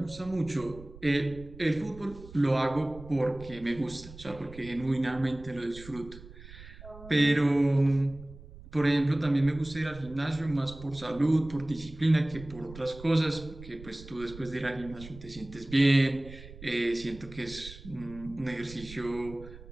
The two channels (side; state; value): right; noise; rumble, 17 dB below the sound